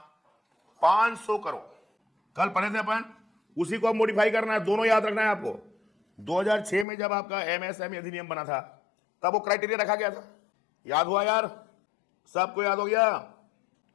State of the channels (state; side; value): drops out; right; at 6.9 s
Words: 500 करोड़। कल पढ़े थे अपन, उसी को अब मॉडिफाई करना है। दोनों याद रखना है आपको। 2006 में जब आपका MSME अधिनियम बना था तब वो क्राइटेरिया रखा गया था। याद हुआ यार? सबको याद हो गया?